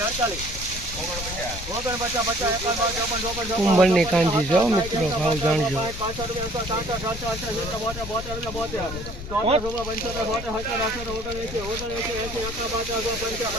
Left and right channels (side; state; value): left; noise; rumble, 9 dB below the sound